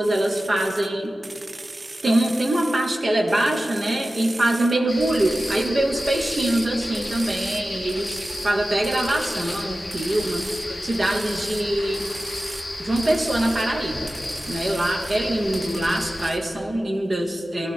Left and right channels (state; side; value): normal; both; correlation 0.95